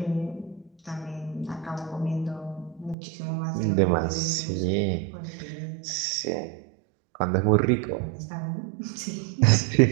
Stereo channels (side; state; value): left; drops out; at 3.0 s